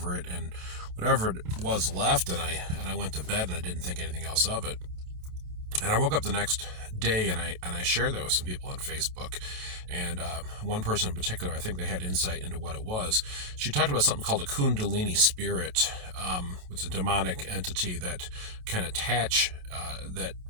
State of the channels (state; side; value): late; left; 27 ms